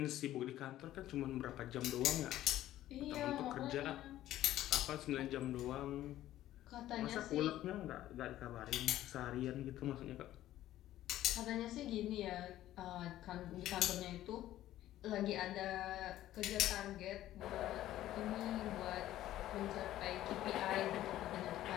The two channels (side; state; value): right; quieter; 13.8 dB